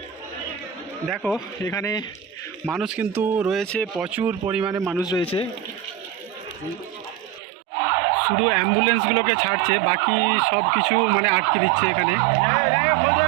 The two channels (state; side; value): drops out; left; at 7.4 s